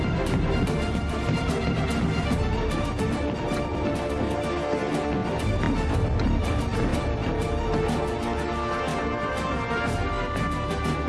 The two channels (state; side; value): identical; both; correlation 1.00